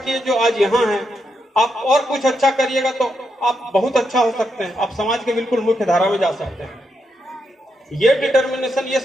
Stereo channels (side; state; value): both; normal; correlation 0.82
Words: जो आज यहाँ हैं, आप और कुछ अच्छा करिएगा तो आप बहुत अच्छा हो सकते हैं, आप समाज के बिल्कुल मुख्य धारा में जा सकते हैं। ये डिटर्मिनेशन, ये